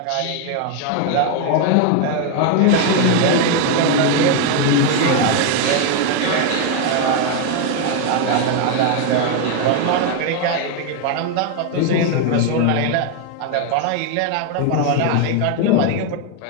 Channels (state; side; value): different; both; correlation 0.01